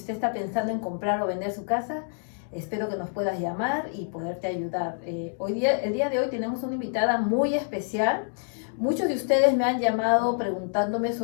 está pensando en comprar o vender su casa, espero que nos puedas llamar y poderte ayudar. El día de hoy tenemos una invitada muy especial. Muchos de ustedes me han llamado preguntándome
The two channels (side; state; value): right; silent; digital silence